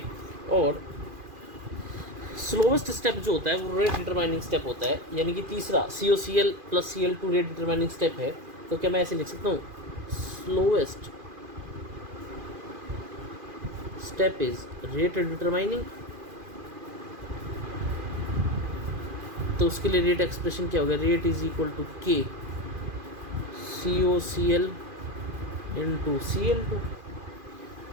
और स्लोवेस्ट स्टेप जो होता है वो रेट डिटरमाइनिंग स्टेप होता है, यानी कि तीसरा COCl plus Cl2 rate determining step है. तो क्या मैं ऐसे लिख सकता हूँ, slowest step is rate determining. तो उसके लिए रेट एक्सप्रेशन क्या होगा, rate is equal to K COCl into Cl2.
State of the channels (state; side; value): late; left; 2.4 ms